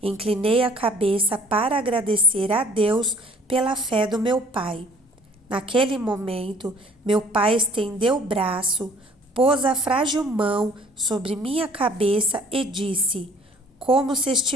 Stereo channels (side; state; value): both; normal; correlation 0.54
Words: inclinei a cabeça para agradecer a Deus pela fé do meu pai. Naquele momento, meu pai estendeu o braço, pôs a frágil mão sobre minha cabeça e disse, como se